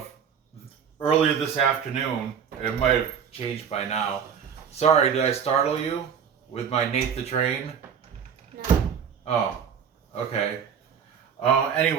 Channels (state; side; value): quieter; left; 7.5 dB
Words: earlier this afternoon. It might have changed by now. Sorry, did I startle you with my Nate the Train? No. Oh, okay.